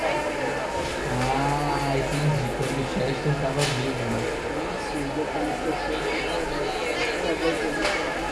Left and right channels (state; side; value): identical; both; correlation 1.00